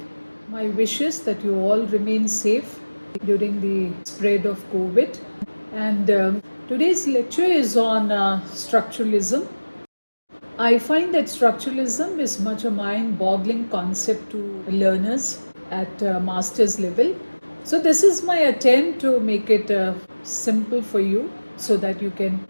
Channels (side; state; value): both; inverted; correlation -1.00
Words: My wish is that you all remain safe during the spread of COVID. And today's lecture is on structuralism. I find that structuralism is much a mind-boggling concept to learners at master's level. So this is my attempt to make it simple for you so that you can